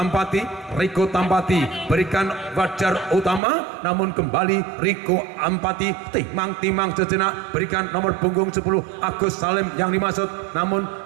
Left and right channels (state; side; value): drops out; left; at 3.4 s